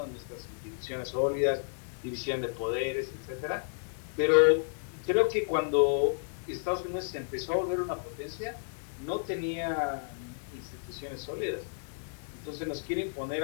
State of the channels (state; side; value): silent; right; digital silence